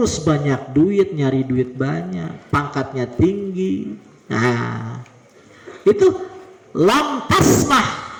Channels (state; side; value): identical; both; correlation 1.00